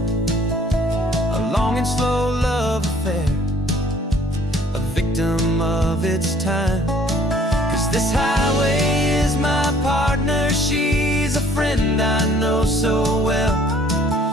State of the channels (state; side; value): normal; both; correlation 0.58